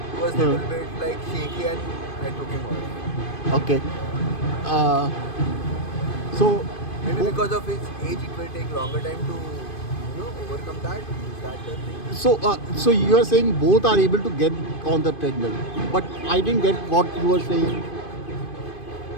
was a little bit like shaky and I took him off. Okay. So Maybe because of his age, it will take longer time to overcome that. Is that the thing? so you are saying both are able to get on the treadmill, but I didn't get what you were saying.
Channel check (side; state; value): right; late; 2.5 ms